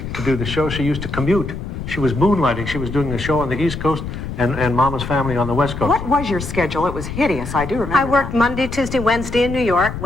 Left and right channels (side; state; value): left; noise; rumble, 7 dB below the sound